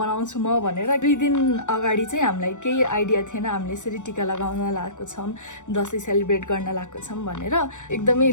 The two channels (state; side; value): late; right; 0.85 ms